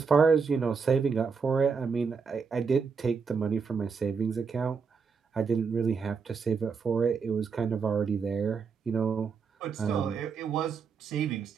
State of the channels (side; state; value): left; quieter; 5.6 dB